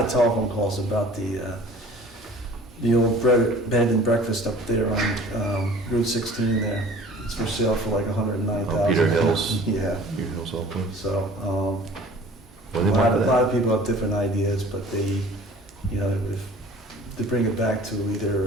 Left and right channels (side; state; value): both; normal; correlation 0.47